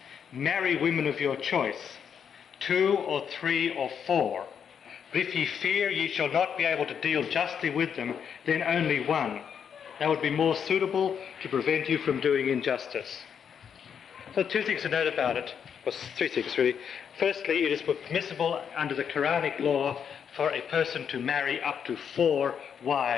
marry women of your choice, 2 or 3 or 4. But if ye fear ye shall not be able to deal justly with them, then only 1. That would be more suitable to prevent you from doing injustice. So 2 things to note about it, or 3 things really. Firstly, it is permissible under the Quranic law for a person to marry up to 4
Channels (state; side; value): quieter; right; 7.6 dB